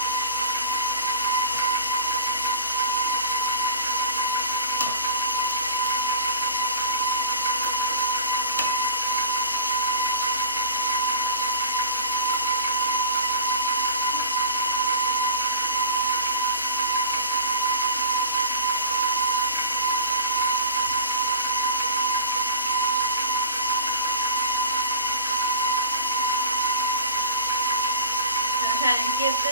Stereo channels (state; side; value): inverted; both; correlation -0.37